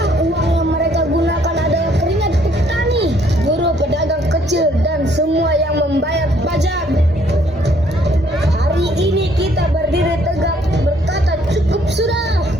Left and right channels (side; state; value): both; normal; correlation 0.64